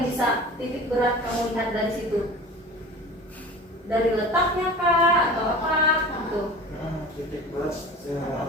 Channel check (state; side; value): normal; both; correlation 0.38